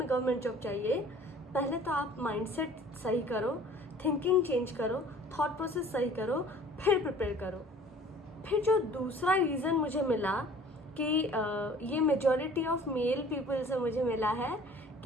गवर्नमेंट जॉब चाहिए, पहले तो आप माइंडसेट सही करो, थिंकिंग चेंज करो, थॉट प्रोसेस सही करो, फिर प्रिपेयर करो। फिर जो दूसरा रीज़न मुझे मिला कि ये मेजॉरिटी ऑफ मेल पीपल से मुझे मिला है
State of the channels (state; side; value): normal; both; correlation 0.50